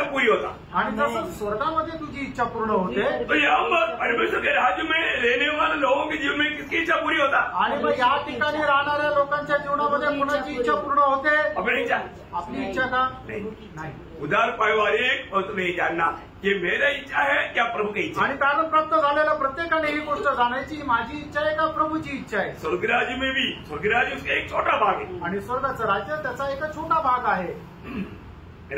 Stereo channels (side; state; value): both; identical; correlation 1.00